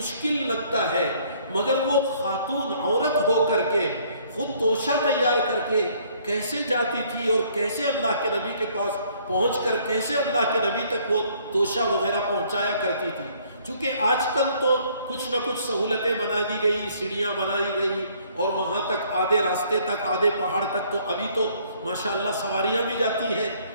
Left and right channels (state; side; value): inverted; both; correlation -0.62